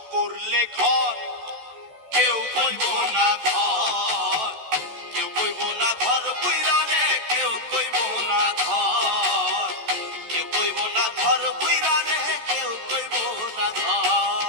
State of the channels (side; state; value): left; late; 14 ms